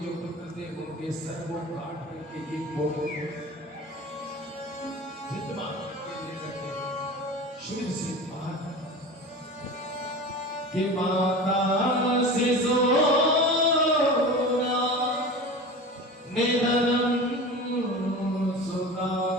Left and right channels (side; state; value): both; normal; correlation 0.32